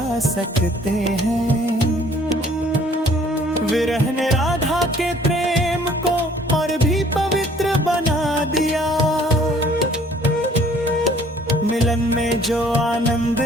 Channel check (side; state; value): both; normal; correlation 0.57